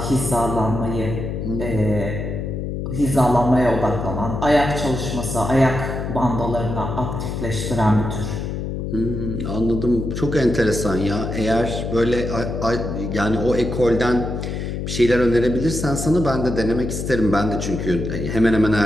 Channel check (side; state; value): left; noise; hum, 4 dB below the sound